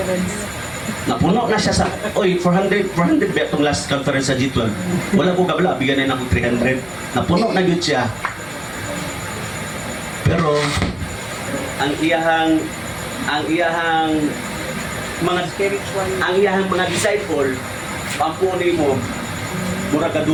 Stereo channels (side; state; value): right; noise; hum, 23 dB below the sound